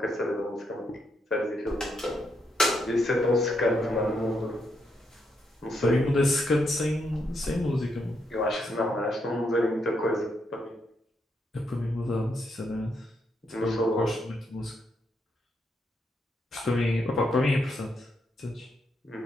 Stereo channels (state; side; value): normal; both; correlation 0.79